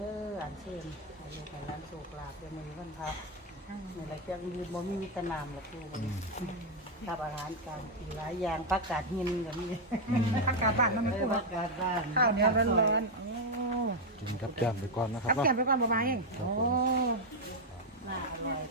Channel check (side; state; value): both; normal; correlation 0.01